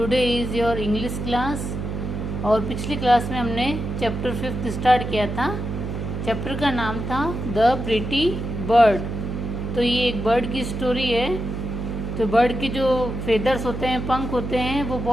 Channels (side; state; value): right; noise; hum, 5 dB below the sound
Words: is your English class. और पिछली class में हमने चैप्टर 5 स्टार्ट किया था। चैप्टर का नाम था द प्रिटी बर्ड। तो ये एक बर्ड की स्टोरी है। तो बर्ड की जो फेदर्स होते हैं, पंख होते हैं, वो